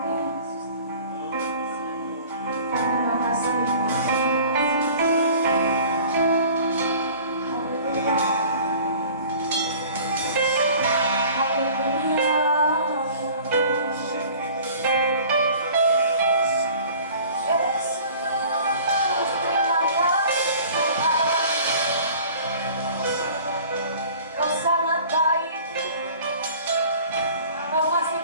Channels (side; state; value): both; inverted; correlation -0.47